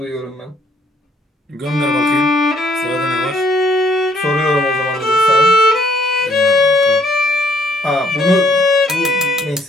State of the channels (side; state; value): both; normal; correlation 0.66